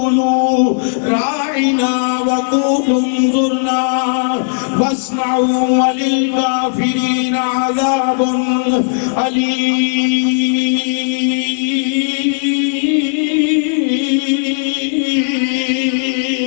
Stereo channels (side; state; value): right; silent; digital silence